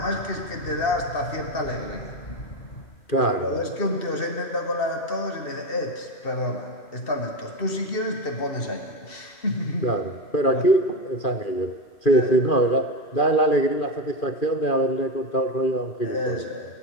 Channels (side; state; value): right; late; 2.7 ms